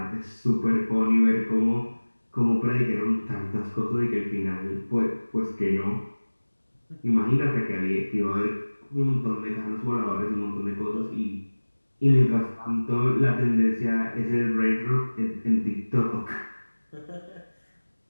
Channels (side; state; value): both; inverted; correlation -1.00